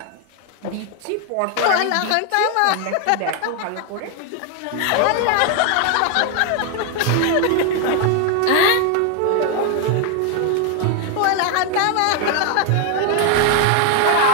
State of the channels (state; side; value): different; both; correlation 0.01